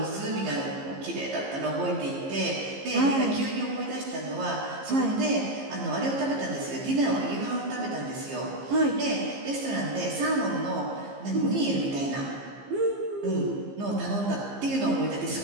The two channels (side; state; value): left; late; 15 ms